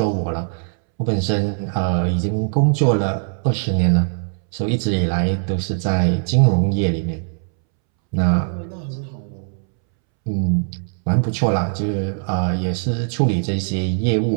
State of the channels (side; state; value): left; silent; 65 dB below the other